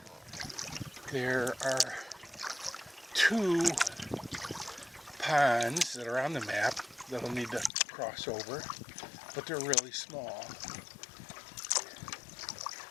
there are 2 ponds that are on the map that I'll need to cross over, but they're really small.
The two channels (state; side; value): drops out; right; at 7.7 s